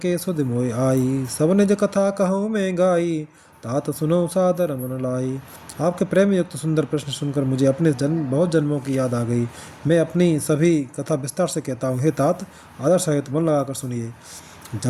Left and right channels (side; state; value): both; identical; correlation 1.00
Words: सुध मोय आई, सब निज कथा कहूँ मैं गाई, तात सुनो सादर मन लाई। आपके प्रेम युक्त सुंदर प्रश्न सुनकर मुझे अपने बहुत जन्मों की याद आ गई। मैं अपनी सभी कथा विस्तार से कहता हूँ। हे तात, आदर सहित मन लगाकर सुनिए।